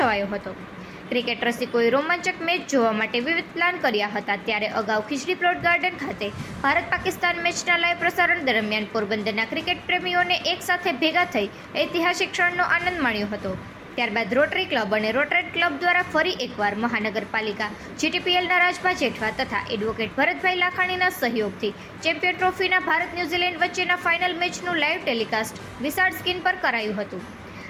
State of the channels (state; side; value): identical; both; correlation 1.00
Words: હતો. ક્રિકેટ રસિકોએ રોમાંચક મેચ જોવા માટે વિવિધ પ્લાન કર્યા હતા. ત્યારે અગાઉ ખીજડી પ્લોટ ગાર્ડન ખાતે ભારત પાકિસ્તાન મેચના લાઈવ પ્રસારણ દરમિયાન પોરબંદરના ક્રિકેટ પ્રેમીઓને એક સાથે ભેગા થઈ ઐતિહાસિક ક્ષણનો આનંદ માણ્યો હતો. ત્યારબાદ રોટરી ક્લબ અને રોટરેટ ક્લબ દ્વારા ફરી એકવાર મહાનગરપાલિકા, જીટીપીએલના રાજભા જેઠવા તથા એડવોકેટ ભરતભાઈ લાખાણીના સહયોગથી ચેમ્પિયન ટ્રોફીના ભારત ન્યૂઝીલેન્ડ વચ્ચેના ફાઇનલ મેચનું લાઈવ ટેલિકાસ્ટ વિશાળ સ્ક્રીન પર કરાયું હતું.